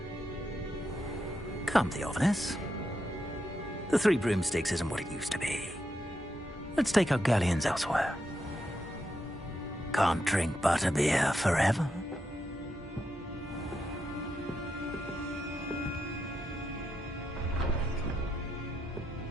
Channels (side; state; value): both; normal; correlation 0.84